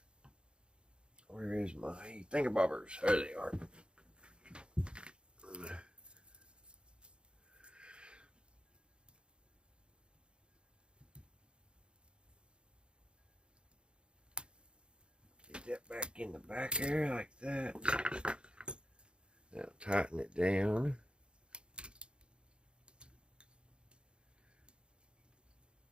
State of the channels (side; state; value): left; late; 0.054 ms